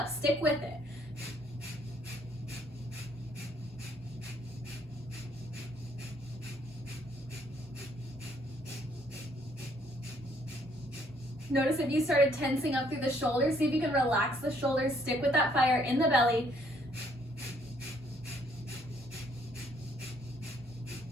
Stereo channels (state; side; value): normal; both; correlation 0.66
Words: Stick with it. Notice if you started tensing up through the shoulders, see if you can relax the shoulders. Stick with that fire in the belly.